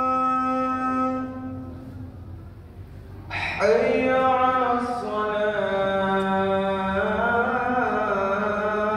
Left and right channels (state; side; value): identical; both; correlation 1.00